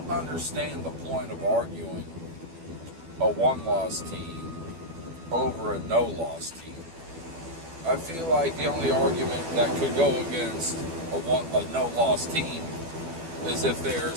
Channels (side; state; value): left; late; 12 ms